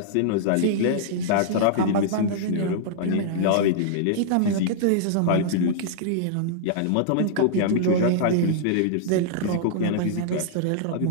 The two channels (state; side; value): different; both; correlation -0.02